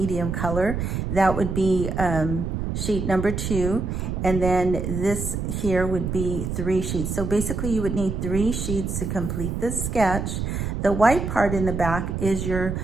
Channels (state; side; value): noise; right; rumble, 3 dB below the sound